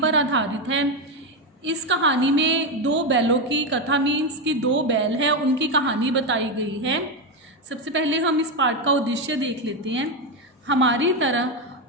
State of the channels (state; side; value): normal; both; correlation 0.09